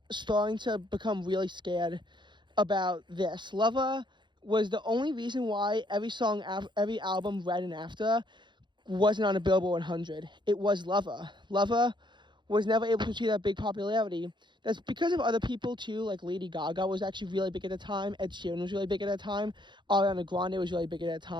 starting to become really scared about this. Lover was the only reason why every album right and after wasn't on a Billboard 100. It was Lover. Lover was never able to achieve that big popularity. That's because of other people too, like Lady Gaga was actually really big at the time, Ed Sheeran was really big at that time, Ariana Grande was really big at that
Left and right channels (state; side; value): late; left; 0.22 ms